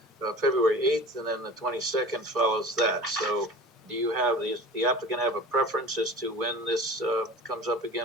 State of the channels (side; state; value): both; normal; correlation 0.39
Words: February 8th, and then the 22nd follows that. So do you have, the applicant have a preference as to when this comes up